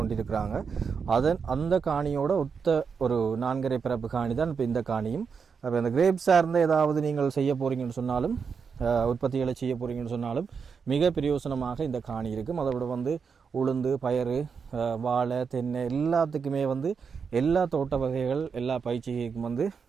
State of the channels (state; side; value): quieter; left; 5.9 dB